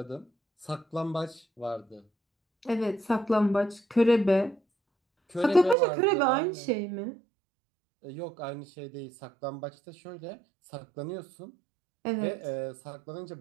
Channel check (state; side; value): drops out; left; at 5.8 s